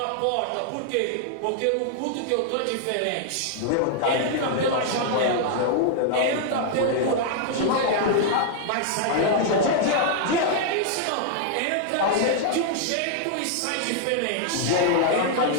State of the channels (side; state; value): both; different; correlation 0.00